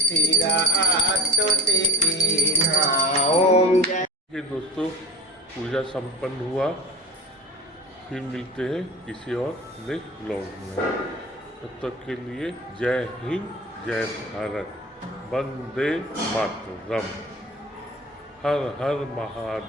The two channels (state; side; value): normal; both; correlation 0.35